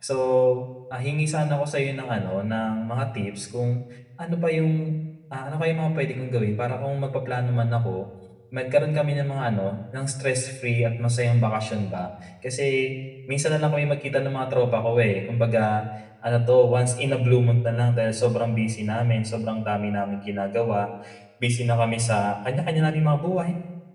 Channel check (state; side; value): identical; both; correlation 1.00